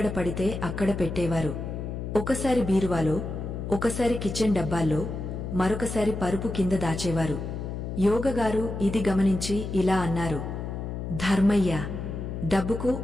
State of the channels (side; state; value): left; noise; hum, 5 dB below the sound